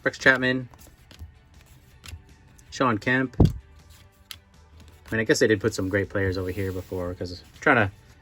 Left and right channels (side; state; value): both; identical; correlation 1.00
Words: Rex Chapman, Sean Kemp. I mean, I guess I did put some great players over here before because I'm trying